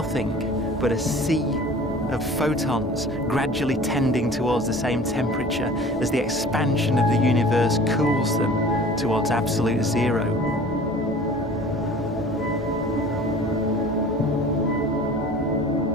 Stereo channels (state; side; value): normal; both; correlation 0.44